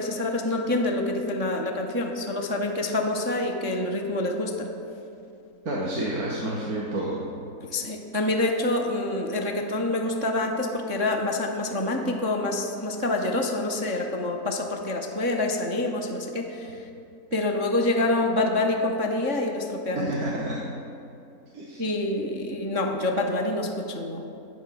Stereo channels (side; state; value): left; late; 3.6 ms